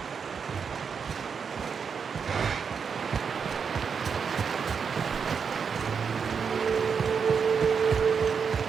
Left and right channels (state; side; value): quieter; left; 6.2 dB